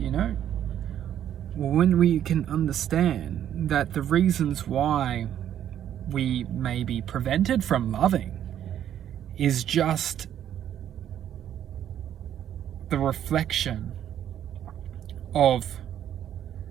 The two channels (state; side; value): quieter; left; 10.4 dB